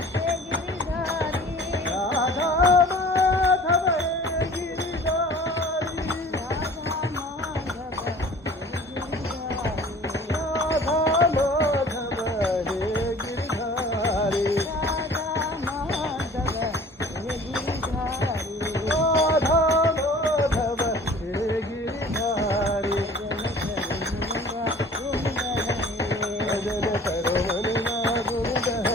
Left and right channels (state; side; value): normal; both; correlation 0.47